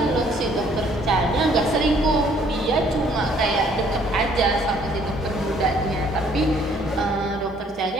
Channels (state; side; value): normal; both; correlation 0.61